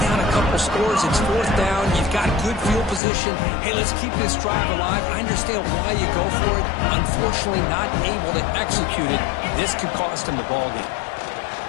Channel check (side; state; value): right; drops out; at 3.0 s